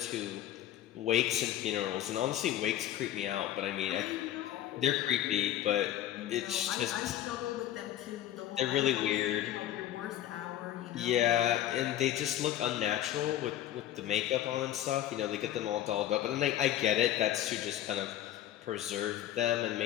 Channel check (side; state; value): right; quieter; 12.2 dB